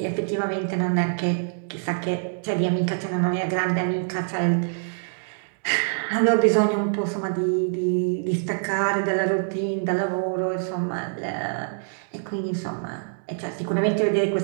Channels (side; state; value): left; silent; digital silence